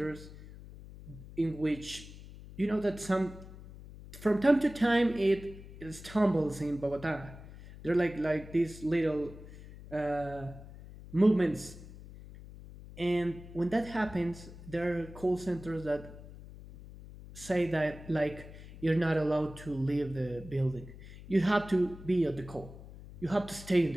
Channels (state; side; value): noise; left; hum, 16 dB below the sound